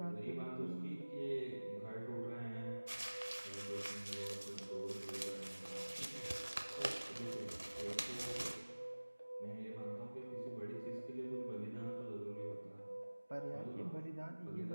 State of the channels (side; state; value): both; inverted; correlation -1.00